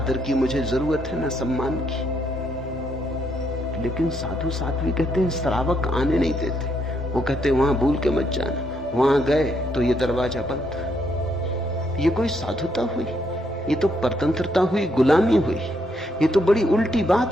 की मुझे जरूरत है, न सम्मान की। लेकिन साधु साध्वी कहते हैं श्रावक आने नहीं देते। वो कहते हैं वहां भूल के मत जाना, वहां गए तो ये दरवाजा बंद। ये कोई साधुता हुई? ये तो परतंत्रता हुई, गुलामी हुई। ये तो बड़ी उल्टी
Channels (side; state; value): both; normal; correlation 0.75